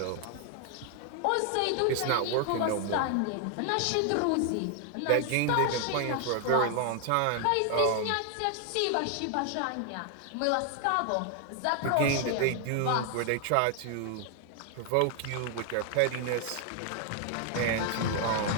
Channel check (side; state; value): both; different; correlation 0.00